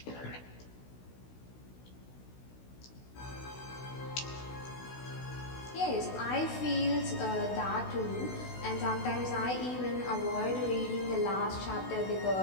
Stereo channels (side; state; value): right; late; 16 ms